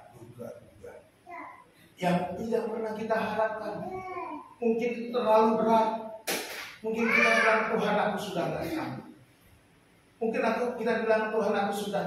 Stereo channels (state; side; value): identical; both; correlation 1.00